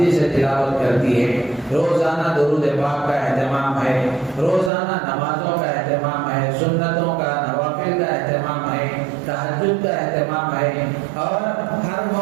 سے تلاوت کرتی ہے، روزانہ درود پاک کا اہتمام ہے، روزانہ نمازوں کا اہتمام ہے، سنتوں کا، نوافل کا اہتمام ہے، تہجد کا اہتمام ہے، اور ہر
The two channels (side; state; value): left; drops out; at 4.7 s